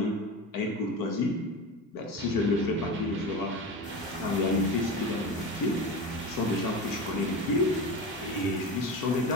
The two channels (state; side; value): normal; both; correlation 0.26